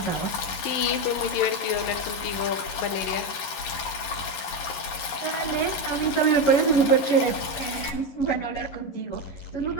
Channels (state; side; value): late; right; 11 ms